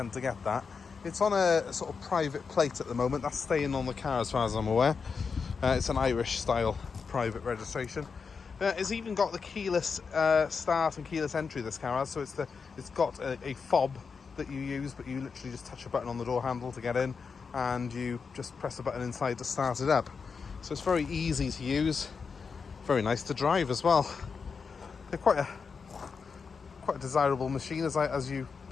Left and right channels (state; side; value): quieter; right; 5.4 dB